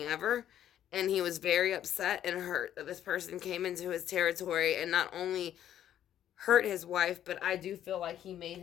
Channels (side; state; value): right; quieter; 11.0 dB